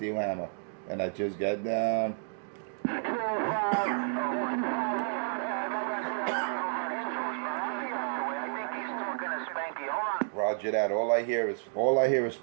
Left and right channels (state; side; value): silent; left; digital silence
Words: hammer. And I just got down. Roger that. All I hear is